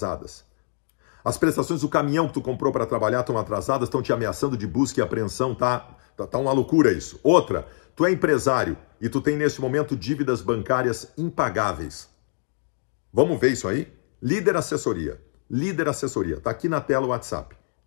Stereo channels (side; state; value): right; silent; digital silence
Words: As prestações do caminhão que tu comprou para trabalhar estão atrasadas, estão te ameaçando de busca e apreensão, tá uma loucura isso. Outra, tu é empresário e tu tem neste momento dívidas bancárias impagáveis. Vamos ver isso aí? Líder Assessoria, tá aqui na tela o WhatsApp.